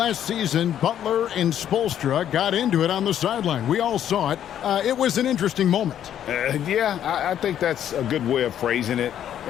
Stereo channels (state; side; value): quieter; right; 10.3 dB